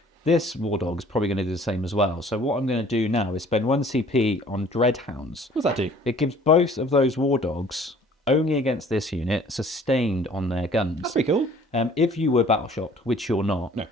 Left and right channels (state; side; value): normal; both; correlation 0.53